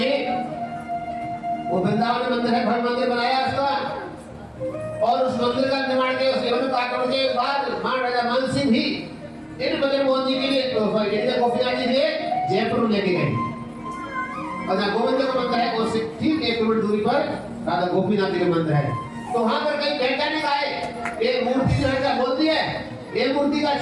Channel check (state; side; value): identical; both; correlation 1.00